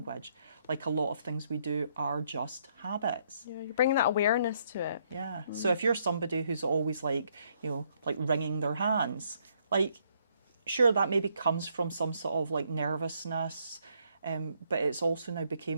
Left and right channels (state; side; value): inverted; both; correlation -0.71